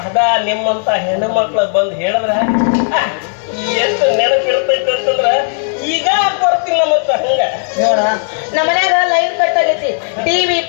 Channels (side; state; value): right; silent; digital silence